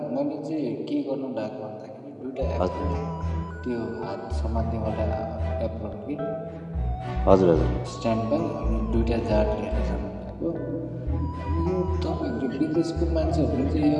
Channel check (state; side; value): identical; both; correlation 1.00